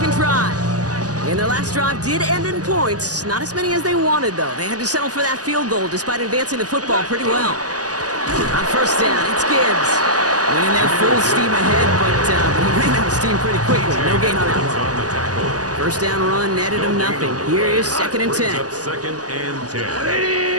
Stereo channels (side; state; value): left; late; 0.67 ms